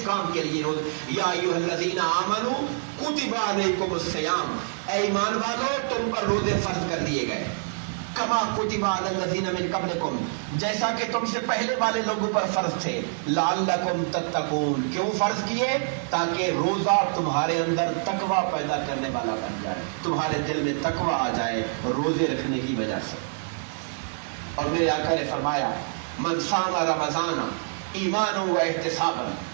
کام کے لیے روز یا ایھا الذین آمنوا کتب علیکم الصیام، اے ایمان والو تم پر روزے فرض کر دیے گئے، کما کتب علی الذین من قبلکم، جیسا کہ تم سے پہلے والے لوگوں پر فرض تھے، لعلکم تتقون، کیوں فرض کیے؟ تاکہ روزہ تمہارے اندر تقوی پیدا کرنے والا بن جائے، تمہارے دل میں تقوی آ جائے روزے رکھنے کی وجہ سے۔ اور میرے آقا نے فرمایا من صام رمضان ایمانا و احتسابا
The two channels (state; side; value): silent; left; 61 dB below the other